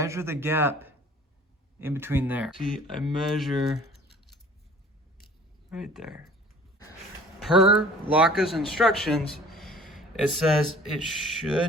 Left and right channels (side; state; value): both; normal; correlation 0.49